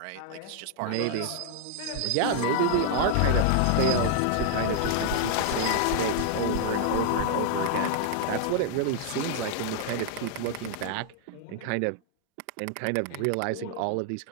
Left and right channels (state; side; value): different; both; correlation 0.00